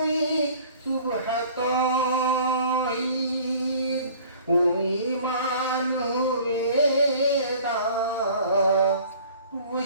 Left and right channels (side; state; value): both; inverted; correlation -0.50